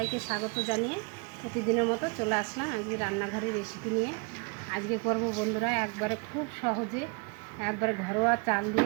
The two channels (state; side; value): quieter; left; 32.0 dB